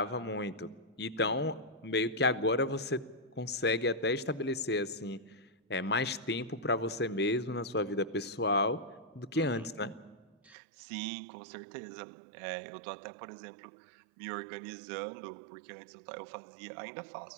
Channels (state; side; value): drops out; left; at 10.6 s